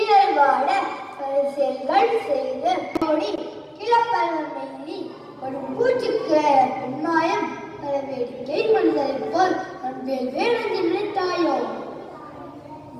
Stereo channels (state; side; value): identical; both; correlation 1.00